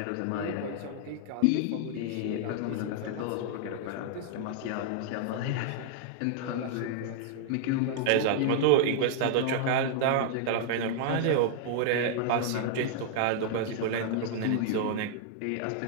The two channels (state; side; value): different; both; correlation 0.00